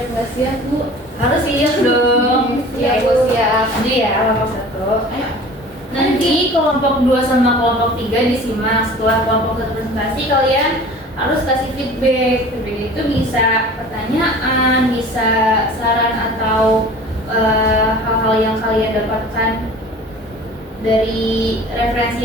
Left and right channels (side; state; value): both; normal; correlation 0.43